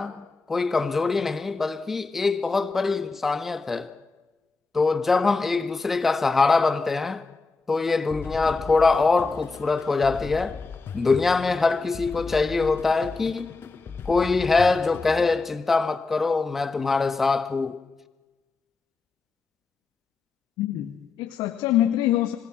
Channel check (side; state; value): right; quieter; 4.1 dB